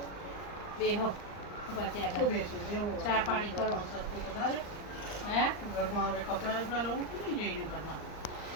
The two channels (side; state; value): right; late; 39 ms